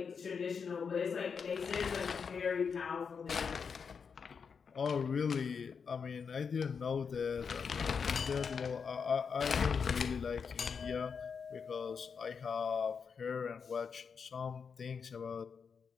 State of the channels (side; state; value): right; quieter; 6.0 dB